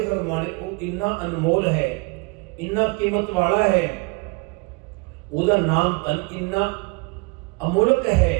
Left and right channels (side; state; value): left; quieter; 28.9 dB